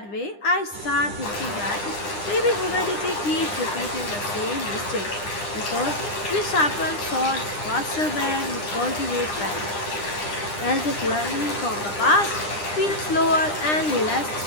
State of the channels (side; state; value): right; late; 9.9 ms